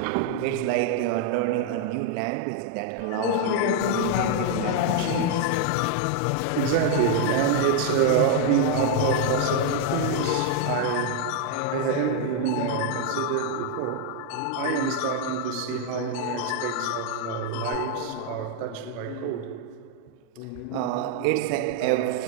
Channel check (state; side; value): different; both; correlation 0.00